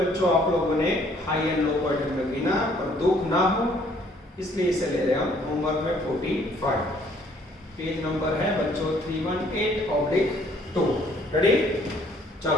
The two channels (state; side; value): normal; both; correlation 0.62